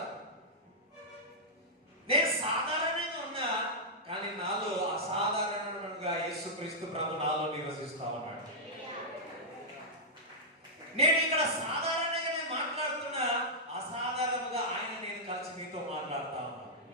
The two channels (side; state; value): both; normal; correlation -0.10